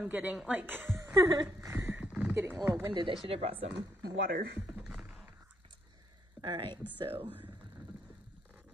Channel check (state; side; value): normal; both; correlation 0.74